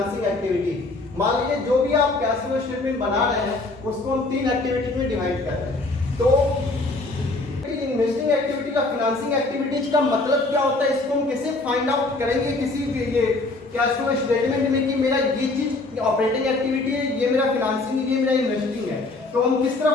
एक्टिविटी। मान लीजिए जो भी आप कैश फ्लो स्टेटमेंट बना रहे हैं, उसको हम तीन एक्टिविटी में डिवाइड कर रहे हैं। तो इन्वेस्टिंग एक्टिविटी का फाइनेंसिंग एक्टिविटीज का मतलब क्या होता है, इसको हम कैसे फाइंड आउट करेंगे किसी ये कैश फ्लो स्टेटमेंट में कि मेरा ये चीज ऑपरेटिंग एक्टिविटी है, ये मेरा फाइनेंसिंग है, ये मेरा इन्वेस्टिंग है। तो हम किस तरह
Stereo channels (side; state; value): right; quieter; 3.1 dB